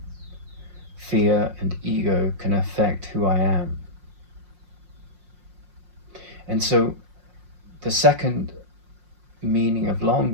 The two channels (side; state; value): left; late; 5.6 ms